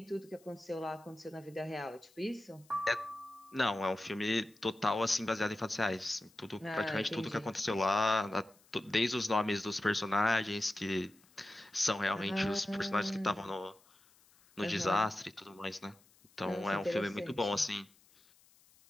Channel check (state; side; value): noise; left; hiss, 29 dB below the sound